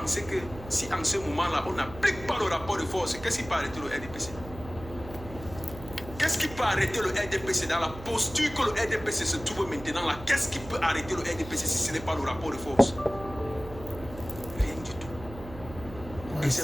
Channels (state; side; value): noise; right; hum, 14 dB below the sound